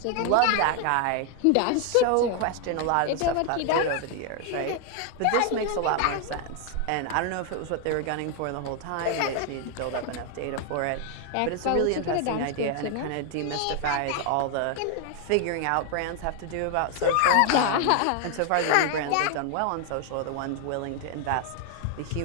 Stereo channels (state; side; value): different; both; correlation 0.00